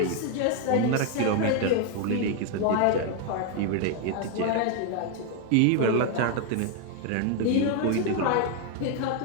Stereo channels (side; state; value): both; different; correlation 0.00